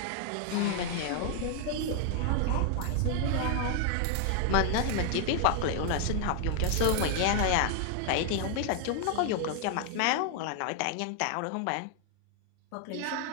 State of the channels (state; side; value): different; both; correlation 0.00